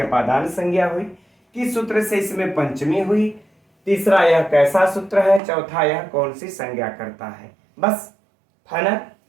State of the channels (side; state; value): left; drops out; at 5.4 s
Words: अपादान संज्ञा हुई, किस सूत्र से इसमें पंचमी हुई, तीसरा यह कैसा सूत्र है, चौथा यह कौन सी संज्ञा करता है, बस फाइनल।